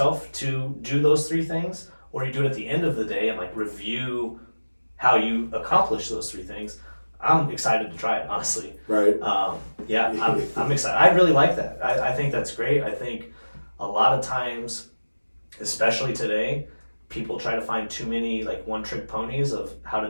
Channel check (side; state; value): both; inverted; correlation -1.00